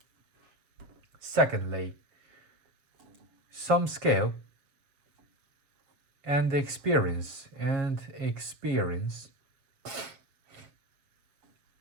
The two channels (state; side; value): late; left; 7.3 ms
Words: Secondly, some scale and experience